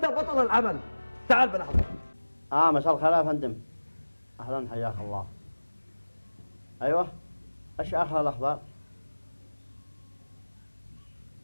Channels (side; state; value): both; inverted; correlation -1.00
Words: بطل العمل. تعال بالأخبار. مساء الخير يا فندم. أهلا حياك الله. أيوه، إيش آخر الأخبار؟